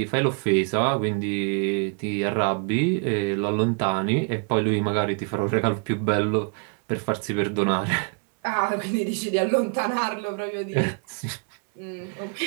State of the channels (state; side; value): quieter; left; 38.6 dB